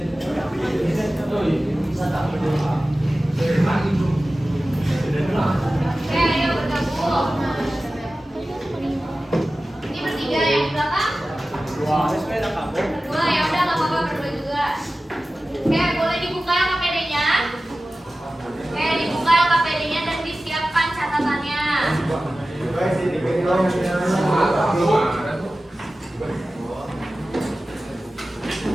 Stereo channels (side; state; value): both; normal; correlation 0.95